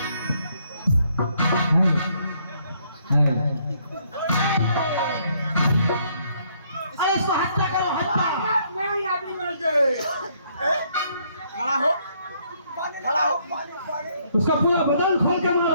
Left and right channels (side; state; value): both; inverted; correlation -0.69